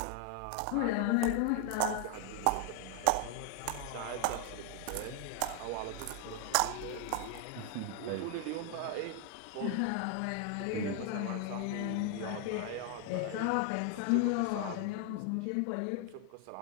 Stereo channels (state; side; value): different; both; correlation 0.01